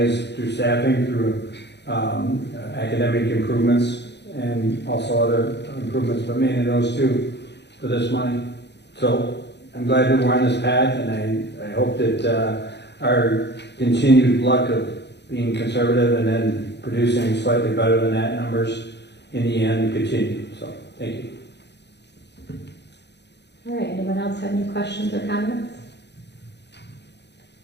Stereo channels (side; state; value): right; late; 0.50 ms